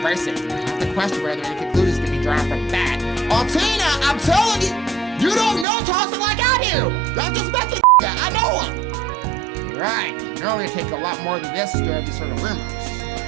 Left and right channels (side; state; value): left; drops out; at 5.7 s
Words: I have to question whether any conclusions can be drawn from that. Altina, I'm telling you, you don't know Tossin like I do! I just met the guy, I know him! Right, normally it take a lot more than this to stir these sort of rumors.